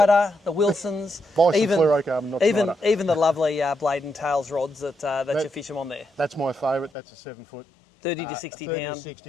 the Wilsons, Buy some fluorocarbon, not Schneider. even the lovely blade and tails rods that you fish them on there. That's my favourite. That's a 7 foot. 30 to 60 30 pound. to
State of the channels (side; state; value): right; drops out; at 6.9 s